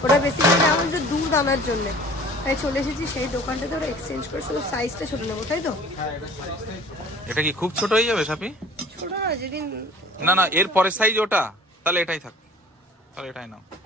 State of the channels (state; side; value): normal; both; correlation 0.47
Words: ওটা বেসিক্যালি আমাদের দুধ আনার জন্য, তাই চলে এসেছি সেই দোকানটাতে, ওরা এক্সচেঞ্জ করে শুধু সাইজটা ছোট নেবো, তাই তো? এটা কি খুব ছোট হয়ে যাবে সাপি? ছোট না, যেদিন না না এর পরের সাইজ ওটা, তাহলে এটাই থাক, তাহলে এটাই নাও।